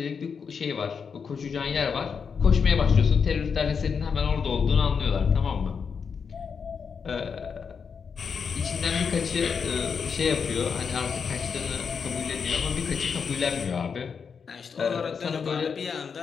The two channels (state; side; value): quieter; right; 6.1 dB